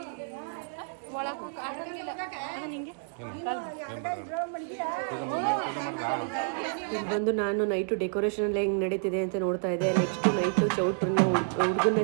ಇದು ಬಂದು ನಾನು ನೈಟು ಡೆಕೋರೇಷನ್ ಎಲ್ಲ ಹೆಂಗೆ ನಡೀತಿದೆ ಅಂತ ನೋಡ್ತಾ ಇದ್ದೆ. ನೆಕ್ಸ್ಟ್ ನೈಟು ಚೌಟ್ರನ್ನ ಹುಡುಗನ್ನ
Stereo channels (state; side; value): silent; left; digital silence